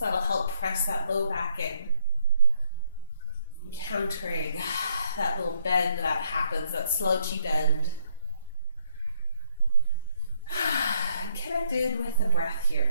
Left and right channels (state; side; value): inverted; both; correlation -0.68